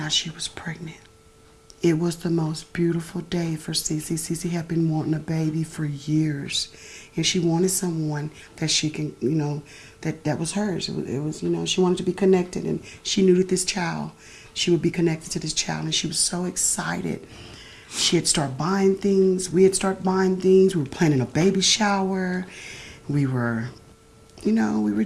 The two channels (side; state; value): both; identical; correlation 1.00